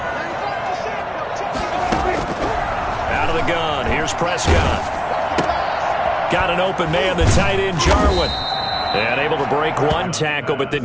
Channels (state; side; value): identical; both; correlation 1.00